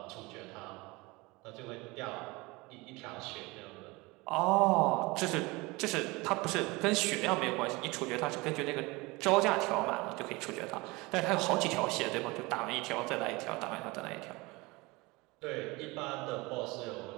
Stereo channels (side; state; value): left; quieter; 23.7 dB